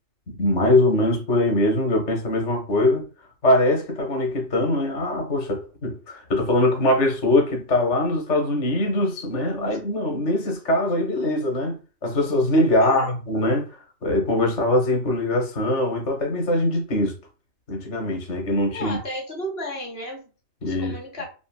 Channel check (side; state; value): right; late; 3.3 ms